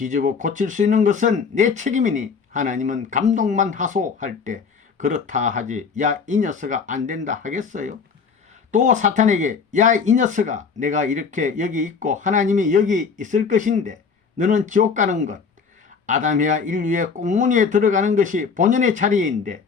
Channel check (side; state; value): right; quieter; 5.6 dB